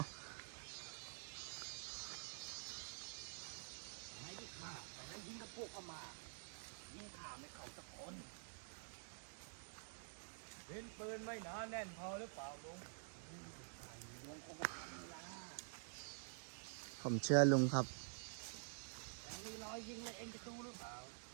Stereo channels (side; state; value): left; silent; digital silence